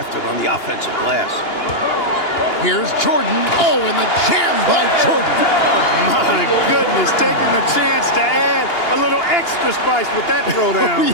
it on the offensive glass. Here's Jordan. Oh, and the jam by Jordan. My goodness, taking the chance to add a little extra spice with that throwdown.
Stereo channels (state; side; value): late; right; 2.9 ms